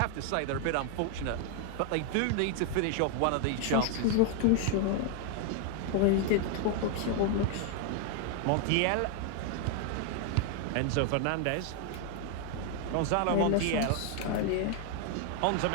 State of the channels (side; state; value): both; different; correlation 0.00